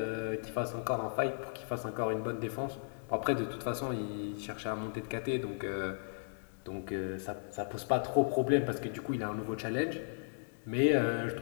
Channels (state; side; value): silent; right; digital silence